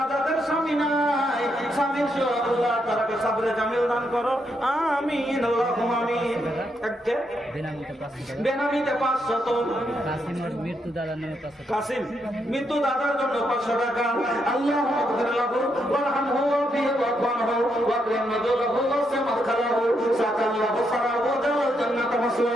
তাদের স্বামী নাই, স্বামীর সহ আল্লাহ তারাকে সাবরে জামিল দান করো। আমিন আল্লাহুম্মা আমিন। একে বেনামিতে 500, কাসিমের মৃত্যু দাদার নামে 500 টাকা। কাসিম মৃত্যু দাদার জন্য 500 টাকা। আল্লাহুম্মা আগফির লাহু ওয়ারহামহু ওয়াফিহি ওয়াফআনহু ওয়াকরিম নুজুলাহু ওয়াসি মাদখালাহু সাকাল্লাহু সারাহু জাওয়াল জান্নাত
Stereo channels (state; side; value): normal; both; correlation 0.79